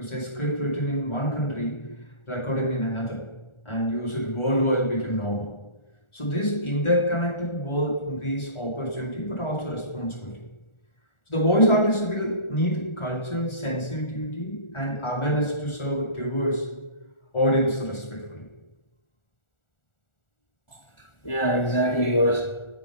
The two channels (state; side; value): late; right; 1.4 ms